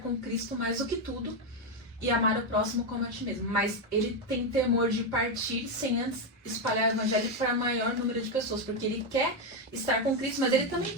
com Cristo mais do que tudo e amar o próximo como a ti mesmo. Mas ele tem temor de partir sem antes espalhar o evangelho para maior número de pessoas, porque ele quer estar com Cristo, mas ele também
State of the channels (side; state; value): both; normal; correlation 0.06